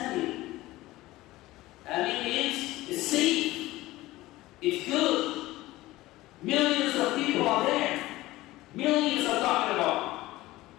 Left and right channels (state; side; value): quieter; right; 17.8 dB